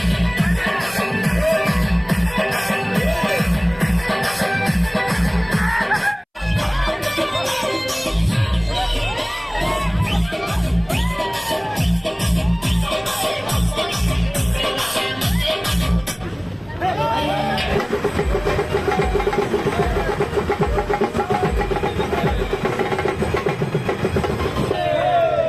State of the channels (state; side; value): identical; both; correlation 1.00